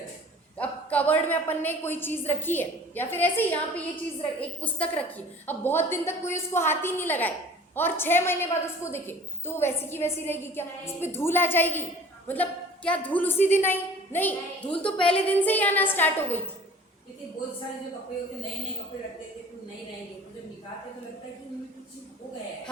अब कवर्ड में अपन ने कोई चीज रखी है, या फिर ऐसे ही यहाँ पे ये चीज एक पुस्तक रखी है, अब बहुत दिन तक कोई उसको हाथ ही नहीं लगाए और 6 महीने बाद उसको देखे, तो वो वैसी की वैसी रहेगी क्या? इस पे धूल आ जाएगी? मतलब क्या धूल उसी दिन आई? नहीं, धूल तो पहले दिन से ही आना स्टार्ट हो गई थी। लेकिन बहुत सारे जो कपड़े होते, नए नए कपड़े रखते थे तो नहीं रहेंगे, तो जब निकालते तो लगता है कि उनमें कुछ हो गया है।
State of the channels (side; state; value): both; normal; correlation 0.47